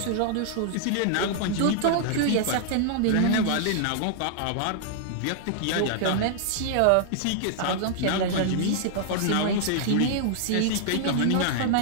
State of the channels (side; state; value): both; different; correlation -0.01